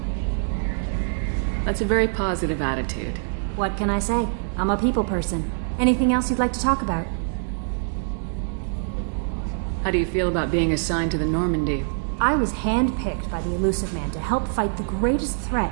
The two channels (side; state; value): left; silent; digital silence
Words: That's a very positive attitude. What can I say? I'm a people person. Anything else you'd like to talk about? How do you feel about being assigned to the Normandy? I was handpicked by the Elusive Man to help fight the greatest